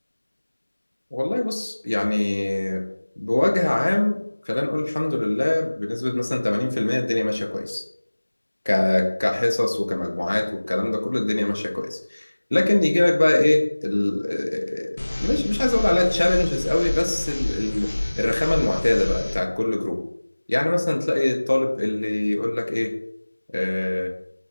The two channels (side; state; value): both; inverted; correlation -1.00